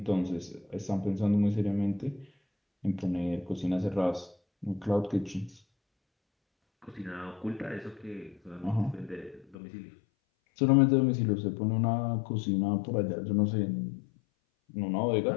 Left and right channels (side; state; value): right; drops out; at 9.6 s